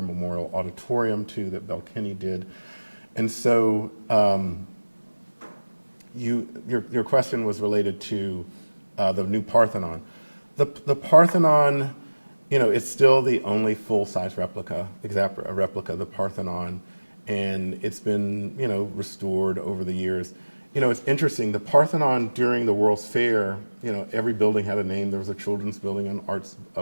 Memorial Auditorium, too, that Belle Kinney did. And so your question was related to the new Parthenon. The Parthenon, it's still the only full-size replica of the Parthenon, and it's been, restored over the years. It's interesting, the Parthenon during the World's Fair, every building had a name. There was a children's building,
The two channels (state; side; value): inverted; both; correlation -1.00